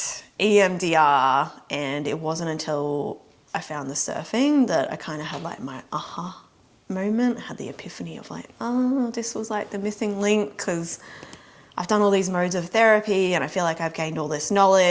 EMDR, and it wasn't until I found the surfing that I kind of had like my aha moment. I had the epiphany of like, oh, this was like the missing link, because I've done all these modes of therapy and I feel like I've gained all this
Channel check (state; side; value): identical; both; correlation 1.00